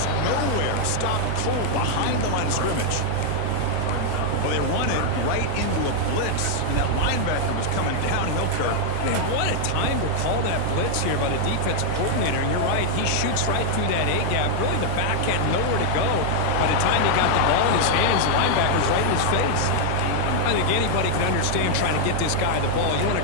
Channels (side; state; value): both; different; correlation 0.00